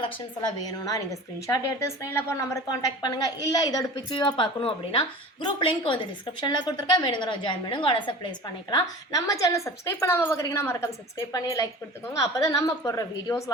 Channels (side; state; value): both; normal; correlation 0.37